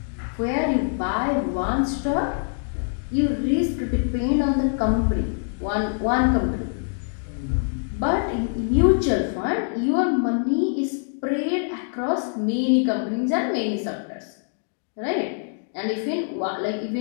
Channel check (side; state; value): right; silent; digital silence